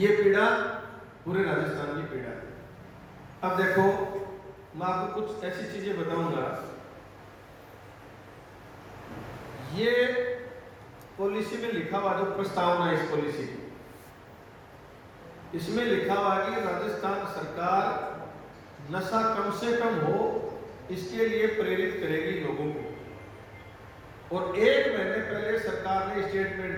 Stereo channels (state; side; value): identical; both; correlation 1.00